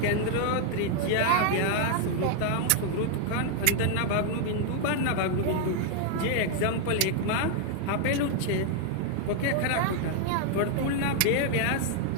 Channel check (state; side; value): different; both; correlation 0.00